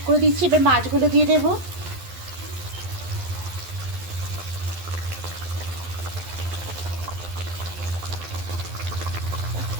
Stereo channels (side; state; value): left; late; 11 ms